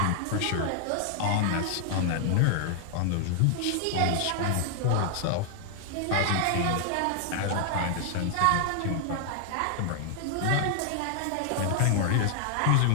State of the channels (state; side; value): different; both; correlation 0.00